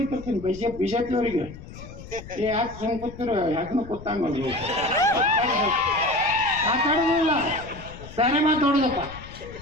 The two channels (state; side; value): noise; left; rumble, 15 dB below the sound